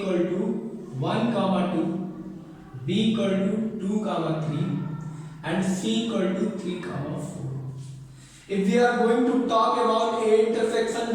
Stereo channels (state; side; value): identical; both; correlation 1.00